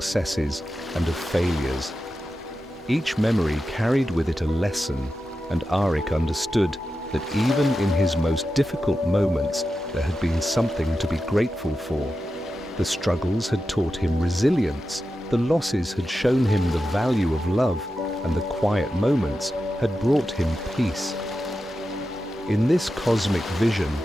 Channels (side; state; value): both; normal; correlation 0.91